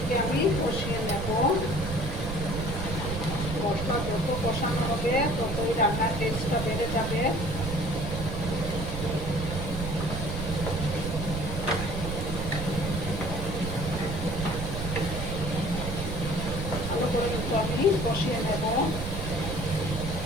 আমি কষিয়ে নেব। মশলা যত কষানো হবে ততই রান্নার টেস্টটা বেড়ে যাবে। ভালো করে কিন্তু আমি কষিয়ে নেব।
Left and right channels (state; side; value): noise; right; rumble, 4 dB below the sound